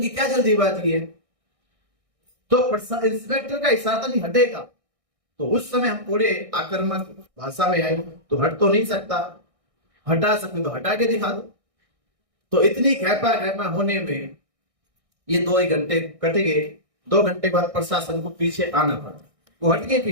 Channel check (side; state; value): left; late; 1.6 ms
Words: क्या जल्दीबाजी है? तो इंस्पेक्टर का इशारा नहीं हटेगा, तो उस समय हम थोड़े आक्रामक भाषा में आए, तो हट तो नहीं सकता, हटा सकते तो हटा के दिखा दो। तो इतनी खेपा होने में ये 2 घंटे कट गए। 2 घंटे बाद प्रशासन को पीछे आना पड़ा, वो हट गए